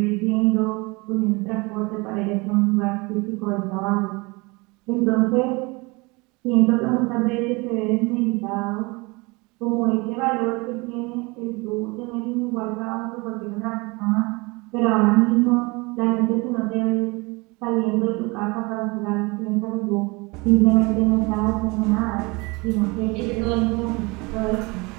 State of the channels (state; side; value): quieter; left; 26.1 dB